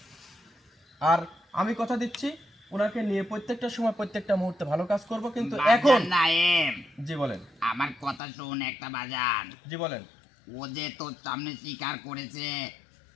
আর আমি কথা দিচ্ছি ওনাকে নিয়ে প্রত্যেকটা সময় প্রত্যেকটা মুহূর্তে ভালো কাজ করব, কিন্তু এখন বাজান নাইম, জি বলেন। আমার কথা শোন একটা বাজান। জি বলেন। ও যে তোর সামনে স্বীকার করেছে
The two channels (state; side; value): drops out; right; at 8.2 s